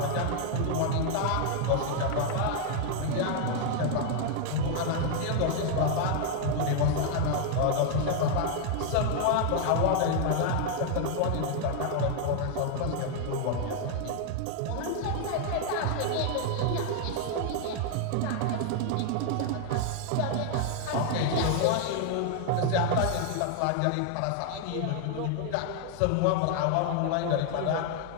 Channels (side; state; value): both; different; correlation 0.00